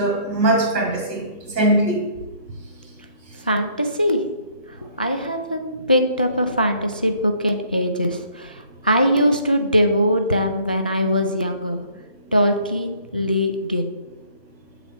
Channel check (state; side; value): inverted; both; correlation -0.60